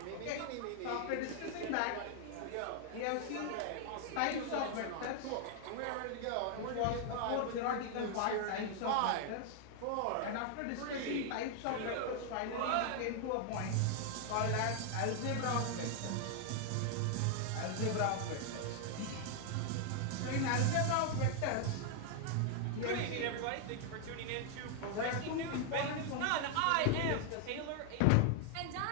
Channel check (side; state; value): both; different; correlation 0.00